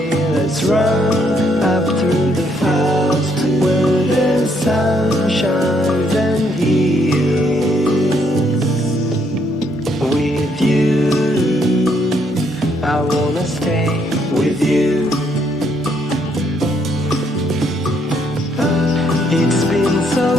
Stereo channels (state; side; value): normal; both; correlation 0.71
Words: Let's run up through the fields where the sun shines and heals. With you, I wanna stay with you. It's been so